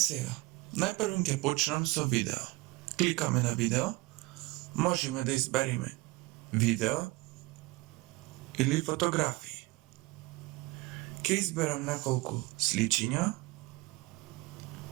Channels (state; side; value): quieter; left; 21.9 dB